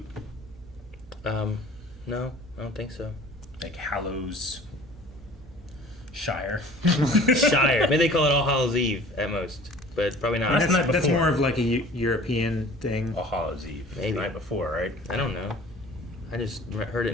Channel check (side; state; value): both; normal; correlation 0.47